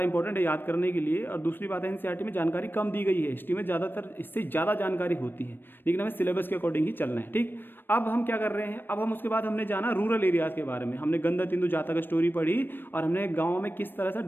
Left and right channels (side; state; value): right; late; 0.096 ms